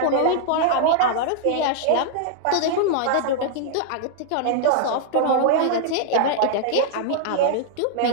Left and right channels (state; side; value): different; both; correlation -0.01